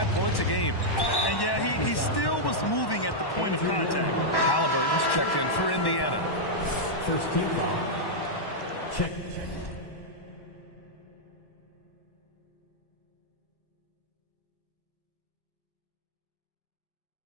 points a game. And yeah, he still was moving at the point of contact. Halliburton's checked in for Indiana. First team foul. Check.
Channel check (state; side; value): late; right; 1.1 ms